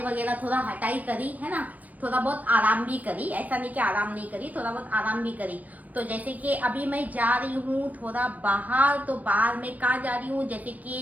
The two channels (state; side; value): late; left; 0.076 ms